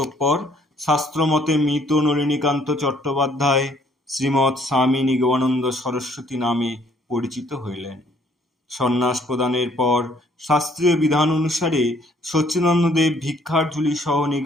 শাস্ত্রমতে মৃত নলিনীকান্ত চট্টোপাধ্যায় শ্রীমৎ স্বামী নিগমানন্দ সরস্বতী নামে পরিচিত হইলেন। সন্ন্যাস প্রদানের পর শাস্ত্রীয় বিধান অনুসারে সচ্চিদানন্দদেব ভিক্ষার ঝুলি সহ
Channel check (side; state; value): both; normal; correlation 0.63